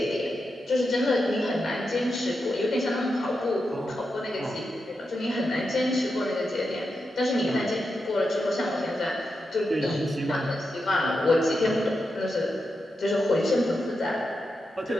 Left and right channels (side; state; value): both; normal; correlation 0.87